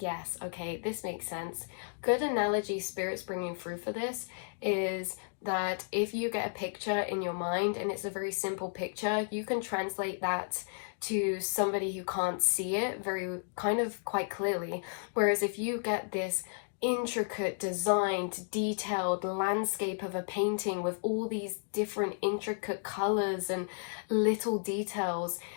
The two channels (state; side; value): silent; right; digital silence